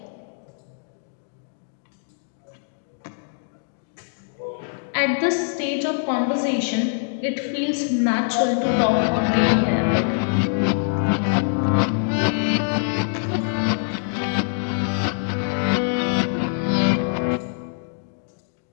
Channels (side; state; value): right; silent; digital silence